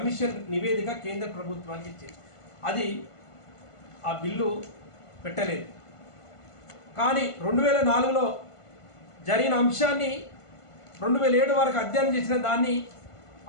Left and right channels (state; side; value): late; right; 1.5 ms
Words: నివేదిక కేంద్ర ప్రభుత్వానికి ఇచ్చింది. అది ఆ బిల్లు పెట్టలేదు. కానీ 2004లో జరిగిన అంశాన్ని 2007 వరకు అధ్యయనం చేసిన దాన్ని